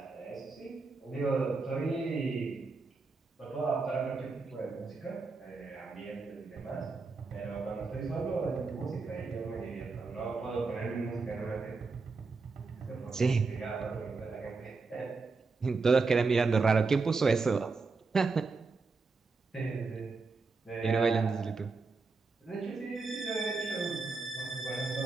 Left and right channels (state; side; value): quieter; left; 4.2 dB